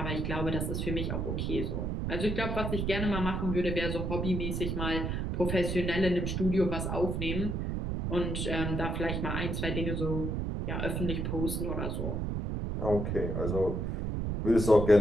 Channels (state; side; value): noise; right; rumble, 1 dB below the sound